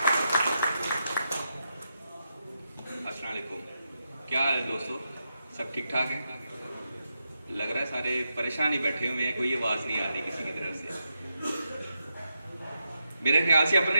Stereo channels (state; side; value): inverted; both; correlation -0.85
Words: अस्सलाम वालेकुम, क्या हाल है दोस्तों? सब ठीक ठाक हैं? लग रहा है सारे परेशान ही बैठे हुए हैं, कोई आवाज़ नहीं आ रही किसी की तरफ से। मेरे ख्याल से अपने